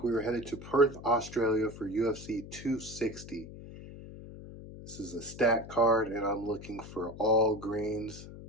we were headed to Perth, Australia for UFC 260. This is a stat card and I'm looking for all greens.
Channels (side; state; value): left; noise; hum, 14 dB below the sound